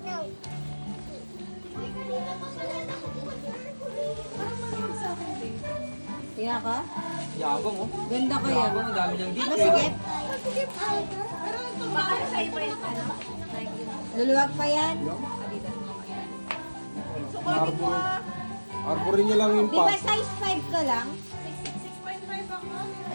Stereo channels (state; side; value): inverted; both; correlation -1.00